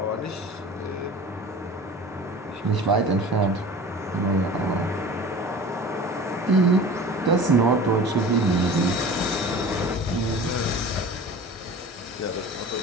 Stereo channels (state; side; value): normal; both; correlation 0.39